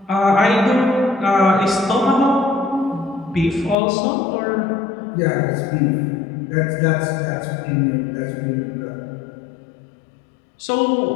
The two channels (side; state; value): right; drops out; at 3.8 s